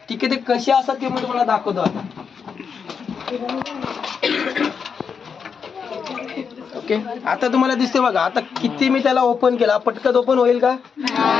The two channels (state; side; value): quieter; right; 6.2 dB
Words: ठीक आहे. ते कसे असतात ते मी तुम्हाला दाखवतो आता. ओके. आता तुम्हाला दिसते बघा, आता किती मी त्याला ओपन केला, पटकन ओपन होईल का?